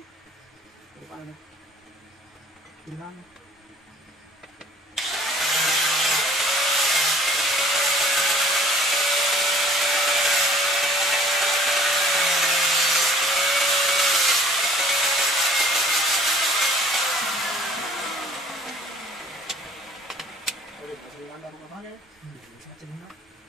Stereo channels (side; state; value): both; normal; correlation 0.53